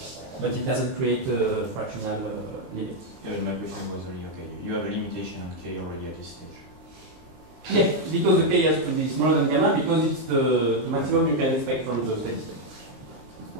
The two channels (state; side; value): late; left; 23 ms